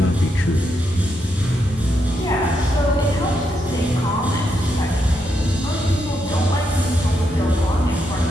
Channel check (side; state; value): both; normal; correlation 0.81